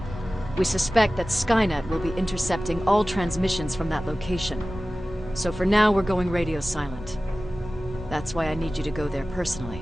We suspect that Skynet will be intercepting all transmissions from that location. So for now, we're going radio silent. That's why I need you to go there personally.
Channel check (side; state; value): both; normal; correlation 0.96